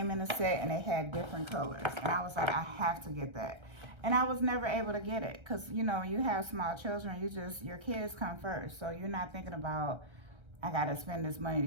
in a set and it had different colors. And I was like, I have to get that. And I was never able to get it because, you know, you have small children, your kids come first. So you're not thinking about, I got to spend this money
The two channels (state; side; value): late; left; 1.3 ms